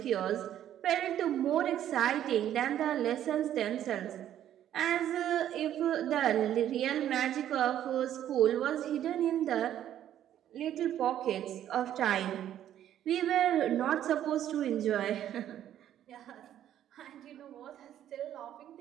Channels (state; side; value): quieter; left; 11.2 dB